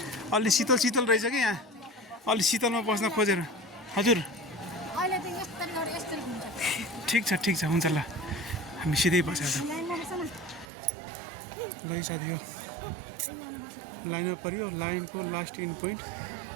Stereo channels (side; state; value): left; drops out; at 10.7 s